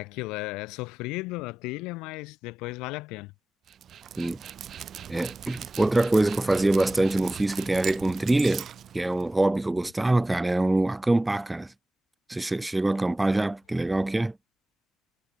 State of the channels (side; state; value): both; normal; correlation 0.96